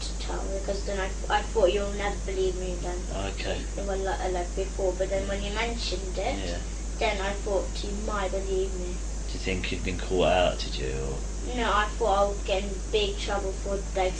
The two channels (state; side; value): identical; both; correlation 1.00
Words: to tell, because then I thought you'll never believe me then. Okay. Well, like before, but then when you mentioned it, yeah, then I thought you might believe me. Do you think you'd been caught out? Did you? Or? No, I thought I would get in big trouble for like